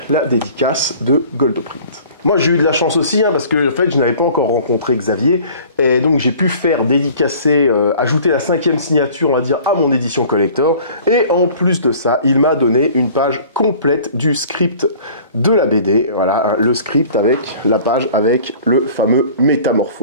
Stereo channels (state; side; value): inverted; both; correlation -0.48